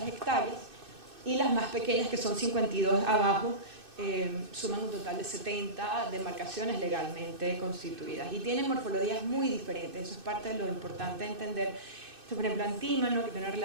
hectáreas, y las más pequeñas, que son 52 abajo, suman un total de 70 demarcaciones legalmente constituidas y tienen morfologías muy diferentes. Eso es parte de lo importante de entender. Esto, por ejemplo, Antímano, que tiene una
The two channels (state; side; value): late; left; 2.6 ms